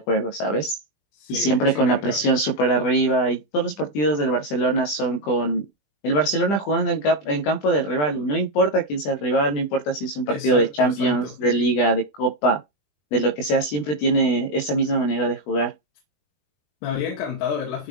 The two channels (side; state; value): right; late; 20 ms